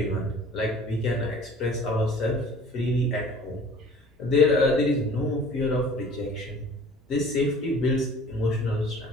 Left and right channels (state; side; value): normal; both; correlation 0.48